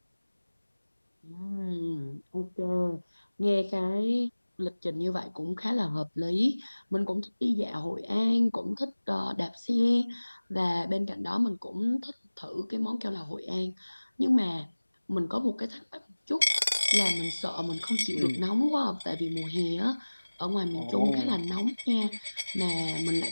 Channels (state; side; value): inverted; both; correlation -1.00